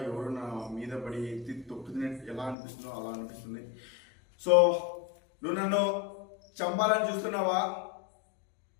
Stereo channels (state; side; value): drops out; right; at 2.6 s